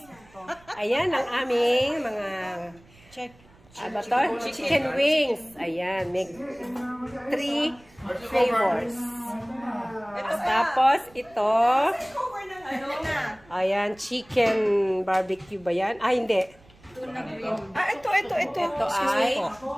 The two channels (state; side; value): noise; right; rumble, 27 dB below the sound